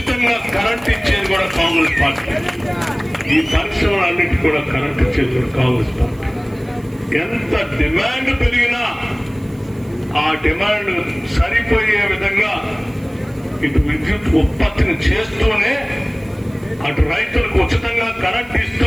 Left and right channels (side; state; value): right; noise; hiss, 29 dB below the sound